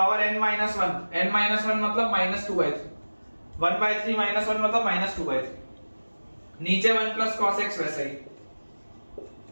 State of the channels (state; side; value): inverted; both; correlation -1.00